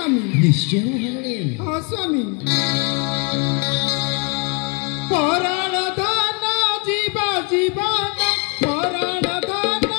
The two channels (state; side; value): quieter; right; 33.1 dB